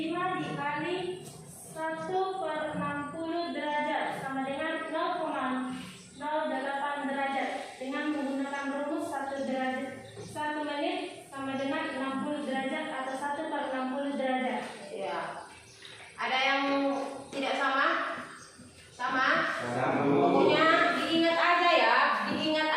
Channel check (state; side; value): identical; both; correlation 1.00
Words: dikali 1/60 derajat sama dengan 0,08 derajat. Dengan menggunakan rumus 1 menit sama dengan 60 derajat atau 1/60 derajat. ya. Ada yang tidak sama? Sama? Sama. Pokoknya diingat aja ya, diingat